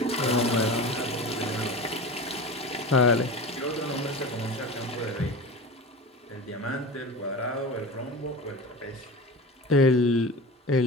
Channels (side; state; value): both; normal; correlation 0.31